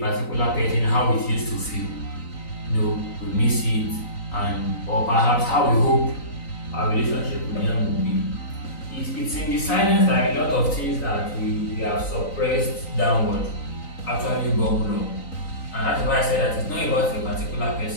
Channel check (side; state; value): right; late; 3.9 ms